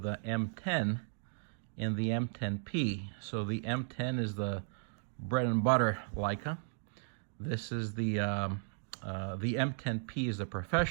the M10 and the M10P. So the M10 is the bread and butter Leica. This is the M10P is the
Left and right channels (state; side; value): silent; left; digital silence